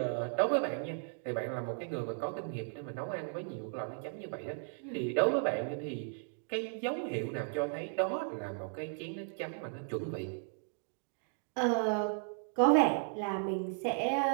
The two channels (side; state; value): left; silent; 54 dB below the other